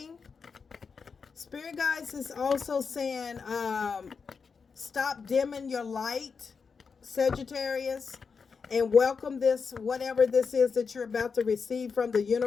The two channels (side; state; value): right; quieter; 5.4 dB